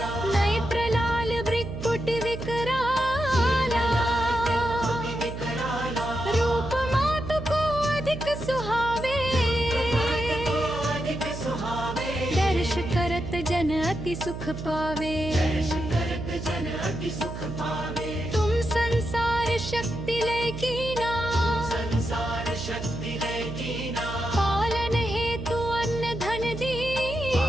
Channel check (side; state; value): right; noise; hum, 8 dB below the sound